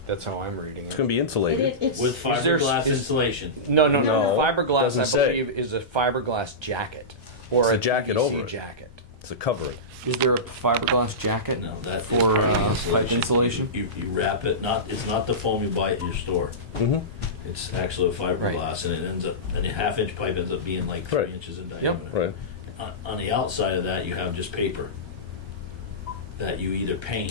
That's how I'm reading It's it. going to be insulated. It's with fiberglass is- insulation. No. No, Fiberglass, doesn't I say. believe, is a fiberglass jacket. Or It's a jacket PVC over it. jacket. It's a covering. Is there a fiberglass jacket No, that is for part of the pipe insulation. insulation? You wrap it, it's not the foam you buy at your store. Mm-hmm. It's actually a fiberglass, and it ends up, and a half-inch pipe ends up being like 3 Right. inches in diameter. Right. On the outside of that, you have just paper that you either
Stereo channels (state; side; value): normal; both; correlation -0.17